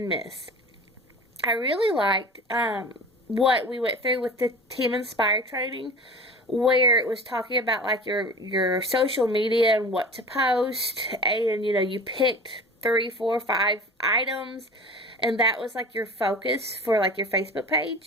miss. I really liked what we went through with the Team Inspire training, where it was talking about like your social media and what to post, and you picked three, four, five items, and that was like your focus for like your Facebook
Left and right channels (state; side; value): normal; both; correlation 0.37